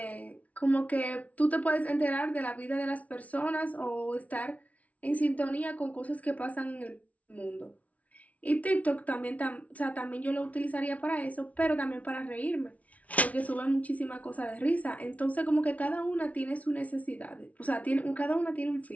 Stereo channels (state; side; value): late; right; 0.068 ms